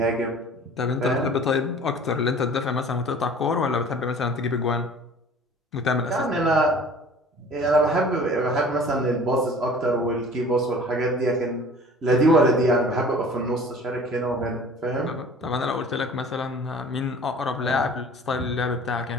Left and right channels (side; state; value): both; normal; correlation 0.46